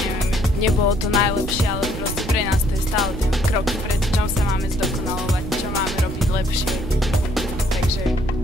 nebolo to najlepšie, ale proste pre nás to je stále ten krok vpred, čom sa máme zdokonalovať, čo máme robiť lepšie. Takže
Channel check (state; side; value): noise; right; rumble, 8 dB below the sound